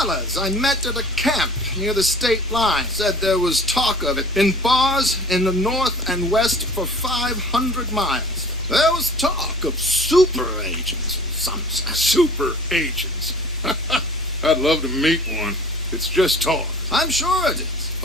I met at a camp near the state line said there was talk of it in bars in the north and west for 500 miles. There was talk of super agents, some said. Super agents. I'd love to meet one. It's just talk. I'm sure it is,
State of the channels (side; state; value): both; normal; correlation 0.46